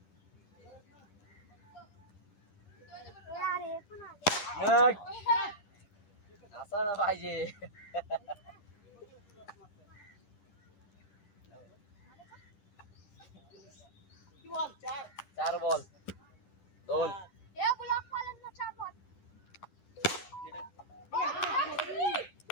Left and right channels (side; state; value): right; late; 10 ms